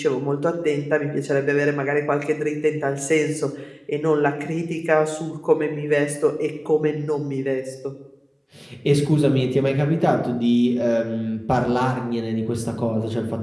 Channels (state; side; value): identical; both; correlation 1.00